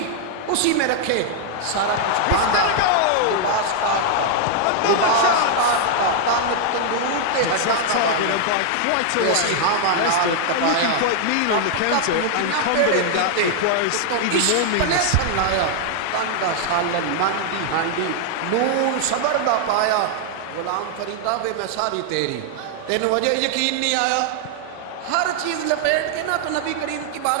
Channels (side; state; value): both; different; correlation 0.00